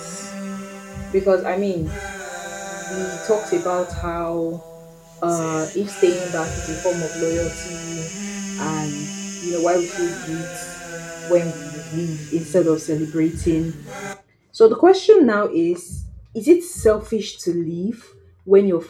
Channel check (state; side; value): identical; both; correlation 1.00